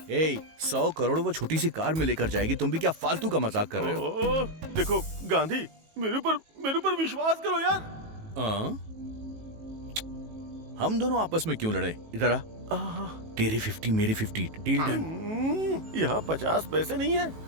100 करोड़ वो छोटी सी कार में लेकर जाएगी, तुम भी क्या फालतू का मजाक कर रहे हो? देखो गांधी, मेरे ऊपर विश्वास करो यार। हम दोनों आपस में क्यों लड़े? इधर आ। तेरे 50 मेरे 50, डील डन। यहाँ 50 पैसे नहीं है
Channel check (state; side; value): late; left; 18 ms